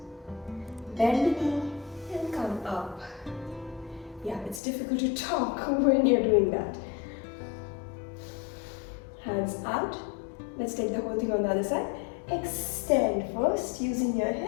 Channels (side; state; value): right; drops out; at 4.6 s